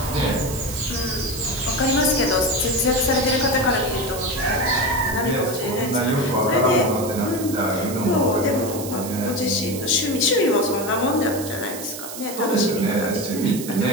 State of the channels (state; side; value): noise; right; hiss, 10 dB below the sound